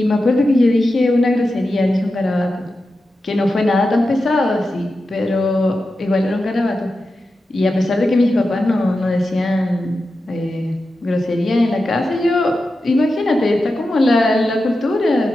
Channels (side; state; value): both; normal; correlation 0.91